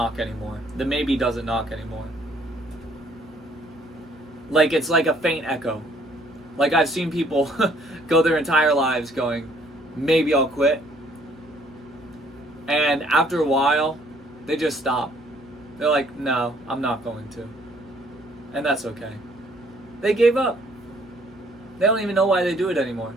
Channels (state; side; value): normal; both; correlation 0.63